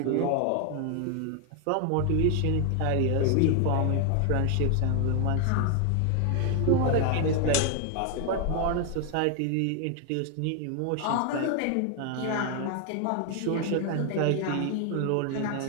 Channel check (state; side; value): different; both; correlation 0.00